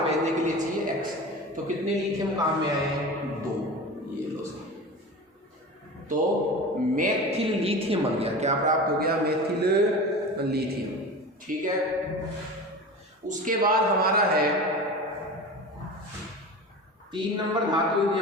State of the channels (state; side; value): normal; both; correlation 0.32